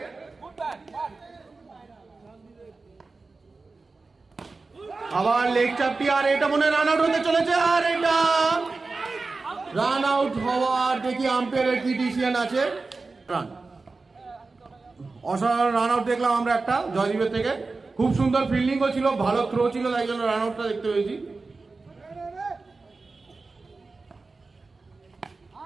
আবার লেগ চাপটি, আর এটা মনে রান আউট হতে চলেছে, আর এটা রান আউট হওয়ার দেখি আম্পায়ারের কি ডিসিশন আছে। রান, অসাধারণ রান আউট দেখলাম আমরা একটা জয়দীপের থেকে। খুব সুন্দর ফিল্ডিংও ছিল, ভালো থ্রো ছিল, তাই জন্য রান আউটটা দেখতে পেয়েছি।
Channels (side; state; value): left; quieter; 3.8 dB